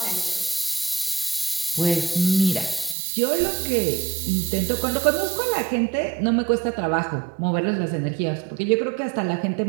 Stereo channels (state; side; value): drops out; left; at 3.0 s